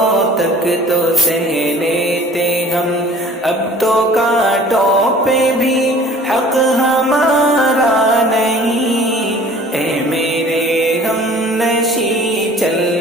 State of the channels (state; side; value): normal; both; correlation 0.49